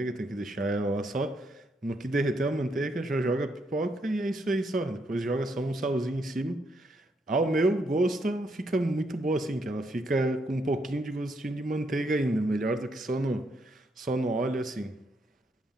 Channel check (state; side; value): normal; both; correlation 0.76